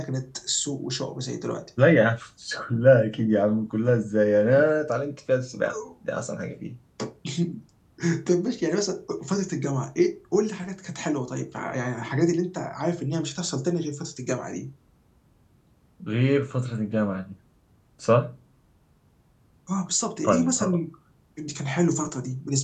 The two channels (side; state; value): both; identical; correlation 1.00